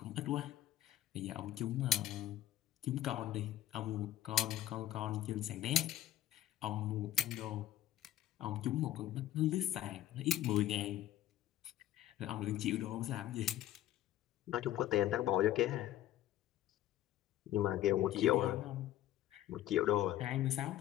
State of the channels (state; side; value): quieter; right; 13.1 dB